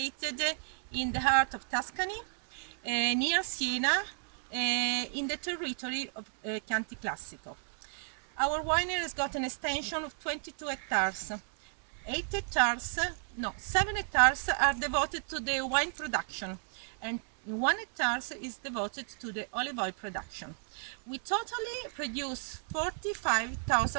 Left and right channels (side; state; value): left; silent; 56 dB below the other